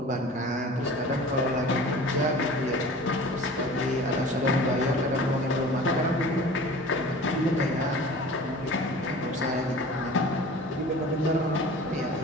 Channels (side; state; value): both; normal; correlation 0.41